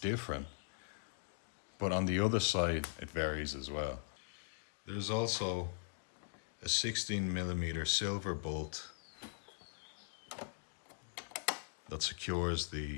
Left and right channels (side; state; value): right; silent; digital silence